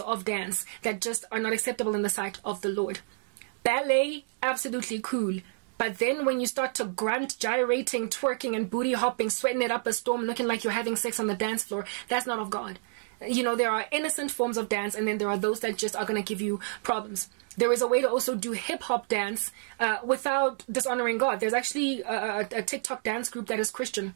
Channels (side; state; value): left; silent; digital silence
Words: dance that just are not acceptable in the sight of the Lord. Ballet, absolutely cool. But then when you start to grunt, gyrating, twerking, and booty hopping, sweating it up a storm, looking like you're having sex on the dance floor, that's not of God. You know, there are innocent forms of dance, and then there are those that just are going to give you problems. There is a way to also do hip-hop dance without dishonoring God. There's actually a TikTok dance group that is Christian,